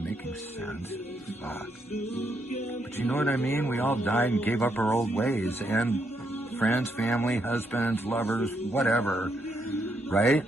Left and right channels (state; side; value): normal; both; correlation 0.77